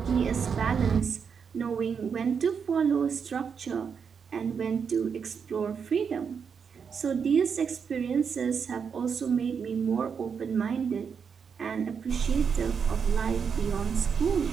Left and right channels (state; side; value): quieter; left; 6.5 dB